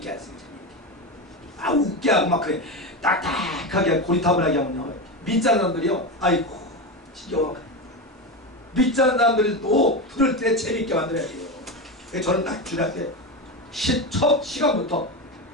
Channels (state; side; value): normal; both; correlation 0.18